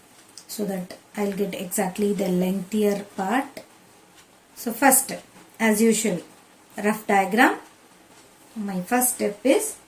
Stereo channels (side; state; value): both; identical; correlation 1.00